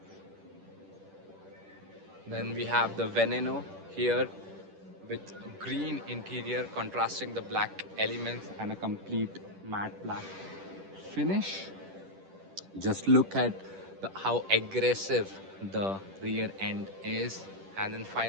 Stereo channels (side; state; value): left; late; 10 ms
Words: Then we have the Veneno here with green interior contrasting the black elements and a complete matte black finish. Just look at how aggressive the rear end is. And then